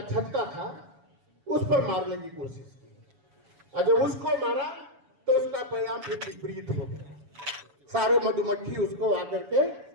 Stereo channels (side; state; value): left; late; 7.1 ms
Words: छत्ता था उस पर मारने की कोशिश की, और जब उसको मारा तो उसका परिणाम फिर विपरीत हो गया। सारे मधुमक्खी उसको आकर के